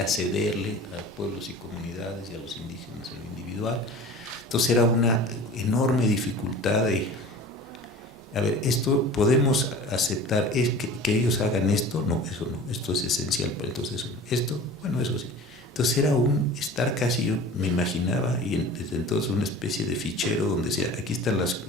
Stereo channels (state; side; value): normal; both; correlation 0.39